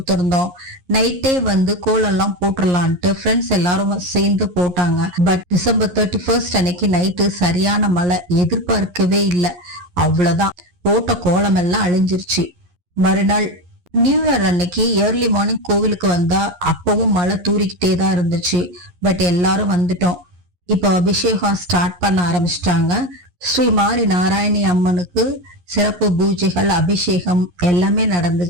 நைட்டே கோலெல்லாம் போட்டுடலான்ட்டு ஃப்ரெண்ட்ஸ் எல்லாரும் சேர்ந்து போட்டாங்க. பட் டிசம்பர் 31 அன்னைக்கு நைட்டு சரியான மழை, எதிர்பார்க்கவே இல்லை. அவ்வளவுதான், போட்ட கோலம் எல்லாம் அழிஞ்சிருச்சு. மறுநாள் நியூ இயர் அன்னைக்கு ஏர்லி மார்னிங் கோவிலுக்கு வந்தா அப்பவும் மழை தூரிக்கிட்டே தான் இருந்துச்சு. பட் எல்லாரும் வந்துட்டோம். இப்போ அபிஷேகம் ஸ்டார்ட் பண்ண ஆரம்பிச்சிட்டாங்க. ஸ்ரீ மாரி நாராயணி அம்மனுக்கு சிறப்பு பூஜைகள், அபிஷேகம் எல்லாமே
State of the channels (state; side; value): late; left; 11 ms